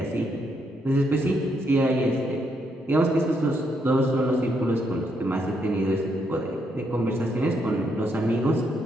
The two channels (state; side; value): normal; both; correlation 0.77